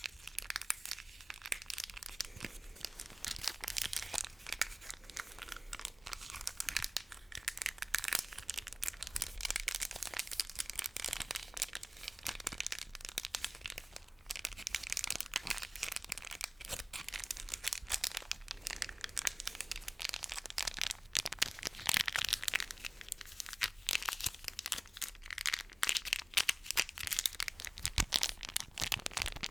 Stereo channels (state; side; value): normal; both; correlation 0.96